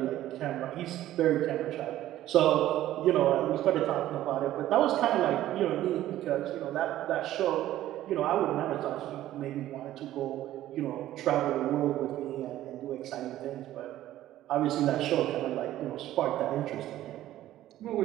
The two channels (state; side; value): quieter; left; 13.8 dB